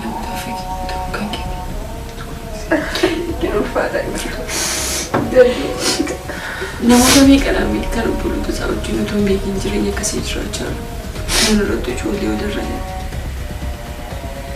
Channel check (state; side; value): identical; both; correlation 1.00